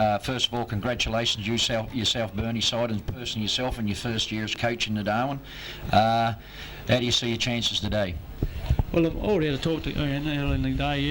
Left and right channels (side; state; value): both; identical; correlation 1.00